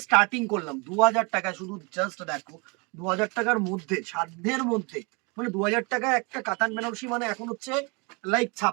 স্টার্টিং করলাম 2000 টাকা, শুধু জাস্ট দেখো 2000 টাকার মধ্যে, সাধ্যের মধ্যে। মানে 2000 টাকায় একটা কাতান বেনারসি মানে এখন হচ্ছে লাইক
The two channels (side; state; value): left; quieter; 30.3 dB